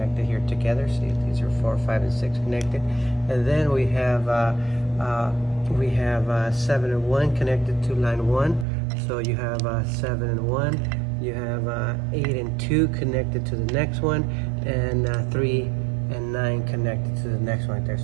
here together. See, these are 4, 5, and 6 connected, and then we have 7 and 1 connected to line 1. So you have 7 and 1. You have 8 and 2 connected to the next one, and 3 and 9 connected to the next one right there.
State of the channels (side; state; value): left; drops out; at 8.7 s